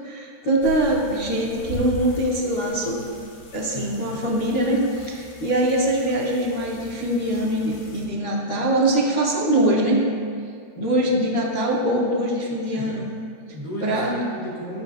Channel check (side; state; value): right; late; 13 ms